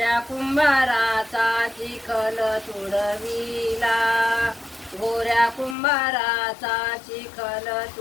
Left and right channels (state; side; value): drops out; right; at 5.8 s